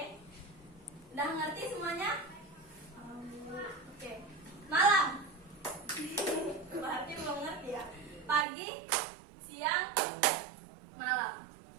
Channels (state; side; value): drops out; left; at 8.5 s